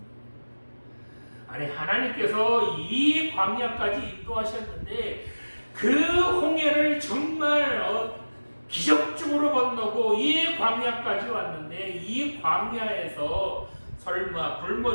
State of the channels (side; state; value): both; inverted; correlation -1.00